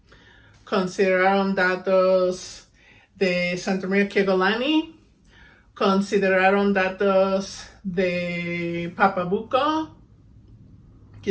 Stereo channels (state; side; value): identical; both; correlation 1.00